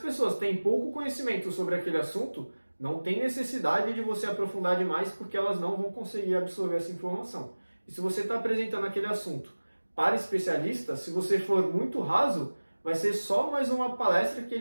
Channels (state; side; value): inverted; both; correlation -1.00